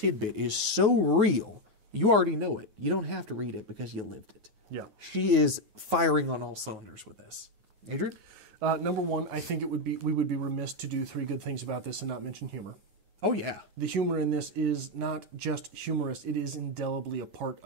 is so real, you already know it. You don't have to read it because you lived it. Yeah. She is firing on all cylinders with this. Adrian? Number 1, I think we would be remiss to do 3 good things about this and not mention humor. Oh, yeah. The humor in this is not just humorous, it is indelibly a part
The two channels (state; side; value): late; left; 9.4 ms